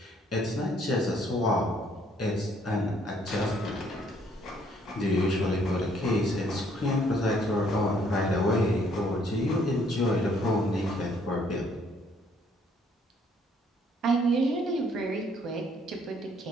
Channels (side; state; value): both; normal; correlation 0.65